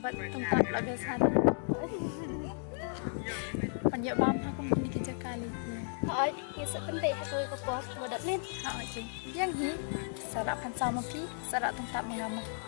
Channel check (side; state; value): right; silent; 55 dB below the other